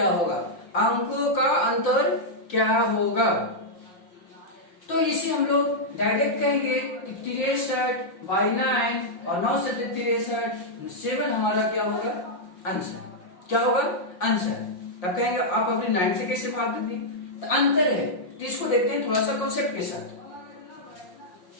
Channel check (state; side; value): late; right; 5.7 ms